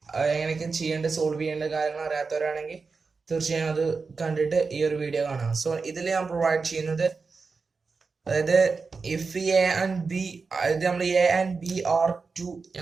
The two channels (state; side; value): quieter; left; 4.6 dB